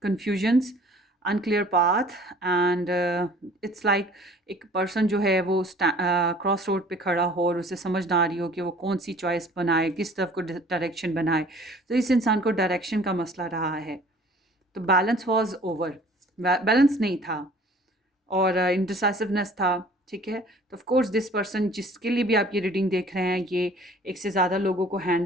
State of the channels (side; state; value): both; normal; correlation 0.51